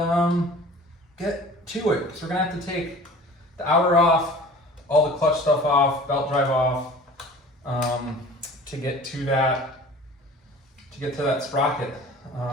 get to it. So we're gonna have to take the outer off, all the clutch stuff off, belt drive off, to get to that sprocket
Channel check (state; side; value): normal; both; correlation 0.44